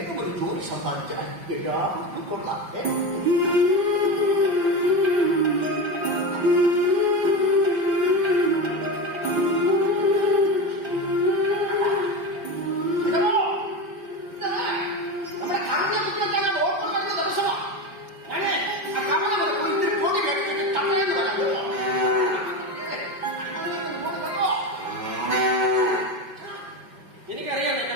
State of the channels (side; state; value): left; late; 5.2 ms